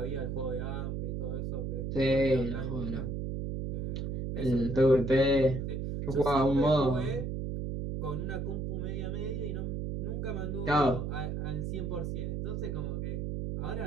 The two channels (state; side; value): noise; right; hum, 3 dB below the sound